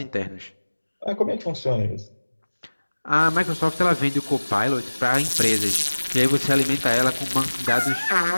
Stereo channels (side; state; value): both; inverted; correlation -1.00